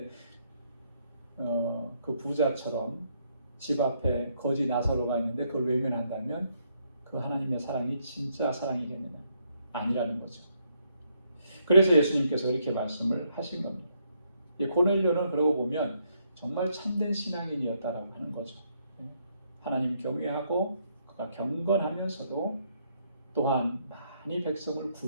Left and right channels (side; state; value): both; inverted; correlation -0.73